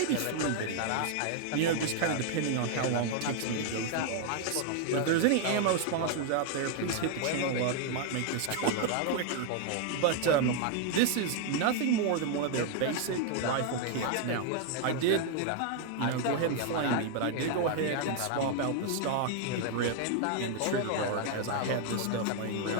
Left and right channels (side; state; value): both; different; correlation 0.00